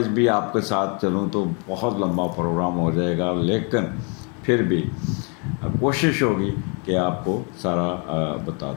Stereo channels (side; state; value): right; quieter; 35.2 dB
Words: بھی آپ کے ساتھ چلوں تو بہت لمبا پروگرام ہو جائے گا, لیکن پھر بھی کوشش ہوگی کہ آپ کو سارا